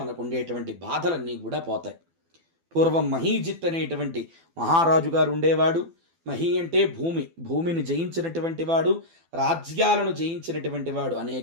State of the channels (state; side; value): late; left; 12 ms